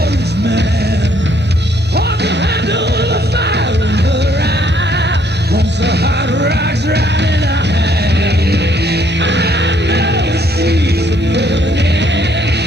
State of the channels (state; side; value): normal; both; correlation 0.67